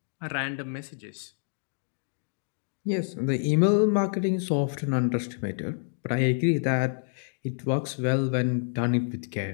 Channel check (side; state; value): right; silent; digital silence